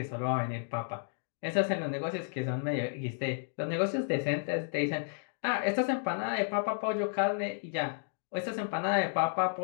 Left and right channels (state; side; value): silent; right; digital silence